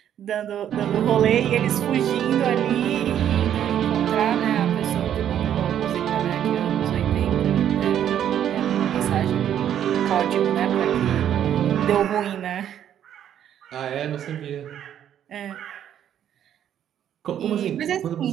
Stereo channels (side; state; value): left; quieter; 10.1 dB